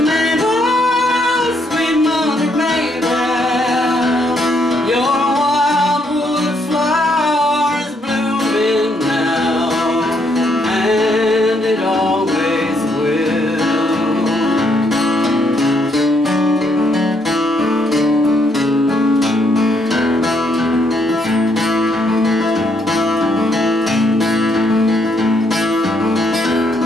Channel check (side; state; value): both; normal; correlation 0.73